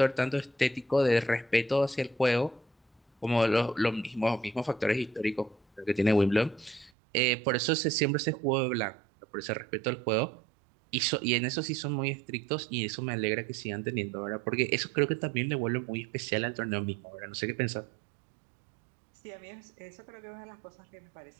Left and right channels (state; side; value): drops out; left; at 6.9 s